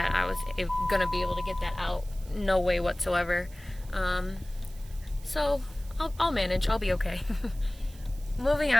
I was gonna be able to get that out. No way whatsoever. So I'll manage. I'll be okay. Moving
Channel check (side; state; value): right; noise; hiss, 23 dB below the sound